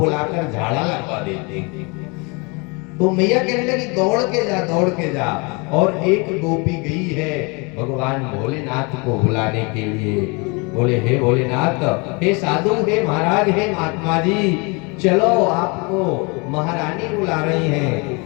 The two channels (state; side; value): quieter; right; 29.9 dB